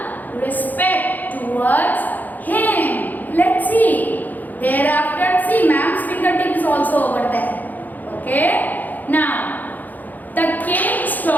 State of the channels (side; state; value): right; late; 0.083 ms